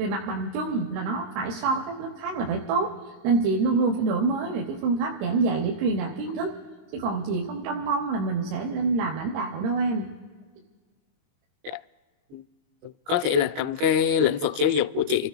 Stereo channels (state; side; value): late; left; 22 ms